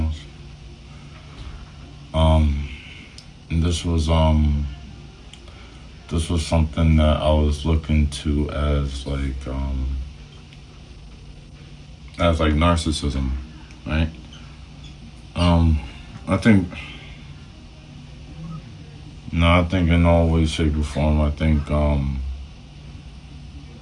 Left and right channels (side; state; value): both; identical; correlation 1.00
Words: Um, and this was something that I was looking to as like narcissism, right? Um, I think no, I think in all ways, shape, or form, I think